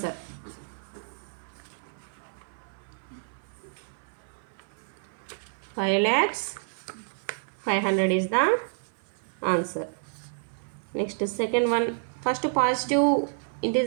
$5,500 is the answer. Next second one, first positive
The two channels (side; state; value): left; silent; 58 dB below the other